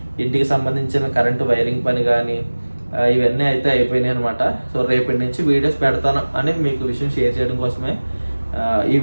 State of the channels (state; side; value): inverted; both; correlation -1.00